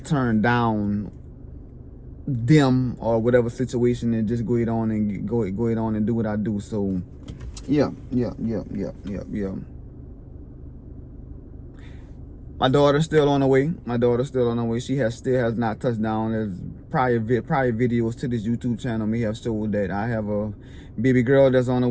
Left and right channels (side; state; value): both; identical; correlation 1.00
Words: turn down them or whatever situation, and just go ahead on and do what I do. So yeah. My daughter's still on the way. My daughter's still on the way. She still has not touched down. There's prior videos to this YouTube channel may have showed that I have a baby girl that's on the